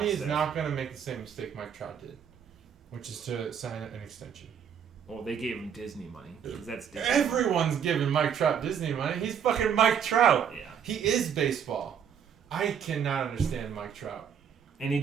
is instead. not going to make the same mistake Mike Trout did, which is to sign an extension. Well, they gave him Disney money because that's Disney. Everyone's giving Mike Trout Disney money. He's fucking Mike Trout. Yeah, He is baseball. I cannot understand Mike Trout. and he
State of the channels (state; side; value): quieter; left; 7.9 dB